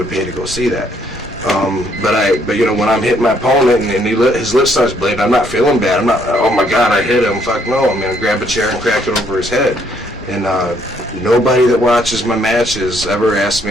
pay to go see that. But you know, when I'm hitting my opponent and his lip starts bleeding, I'm not feeling bad. I'm not, oh my God, I hit him. Fuck no. I'm gonna grab a chair and crack it over his head. And nobody that watches my matches ever asks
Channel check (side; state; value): both; normal; correlation 0.68